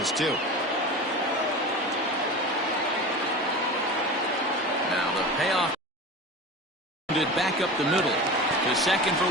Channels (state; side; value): normal; both; correlation 0.31